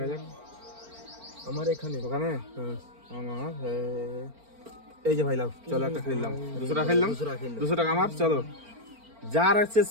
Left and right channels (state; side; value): late; left; 4.4 ms